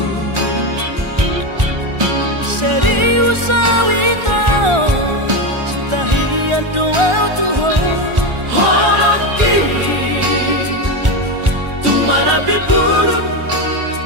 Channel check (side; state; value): left; late; 1.4 ms